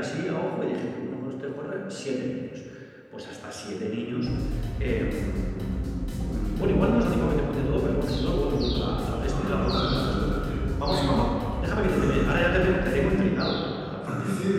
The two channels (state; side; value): identical; both; correlation 1.00